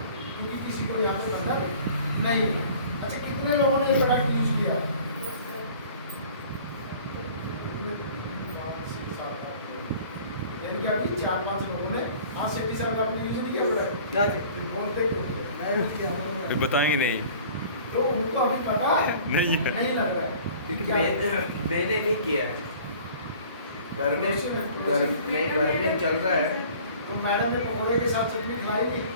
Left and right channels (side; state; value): both; inverted; correlation -0.48